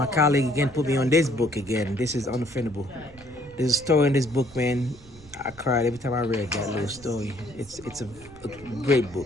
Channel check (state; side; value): noise; right; rumble, 22 dB below the sound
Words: colleague again put me on this book again. This is Unoffendable. There's a story in this book, man. I cried every time I read that little story. It's a great